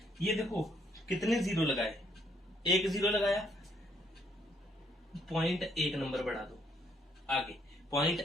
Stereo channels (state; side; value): normal; both; correlation 0.70